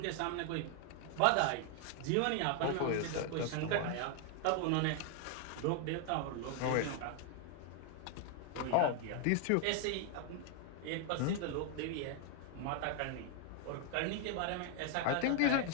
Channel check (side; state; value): both; different; correlation 0.00